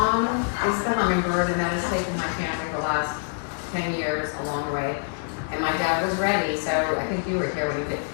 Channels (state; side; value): silent; right; digital silence